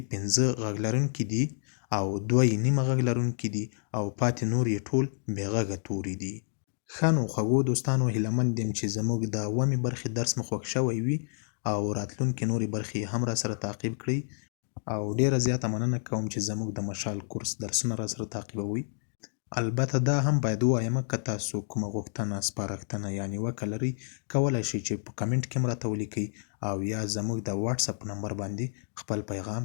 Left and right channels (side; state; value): right; silent; digital silence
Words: 15 غږ لرونکي دي او 2 یې نیمه غږ لرونکي دي او پاتې نور یې ټول بې غږه توري دي. ښه نو خوږو دوستانو هیله مند یم چې زموږ د اوومې برخې درس مو خوښ شوی وي او راتلونکې نورې برخې هم را سره تعقیب کړئ. او ډیره زیاته مننه کوم چې زموږ د مشال کورس درسونه را سره تعقیبوئ. البته دا هم باید ووایم که تاسو کومه غوښتنه سپارښتنه یا نیوکه لرئ کولی شئ چې په کمنټ کې هم راته ولیکئ او یا زموږ د واتساپ نمبر باندې خپل پیغام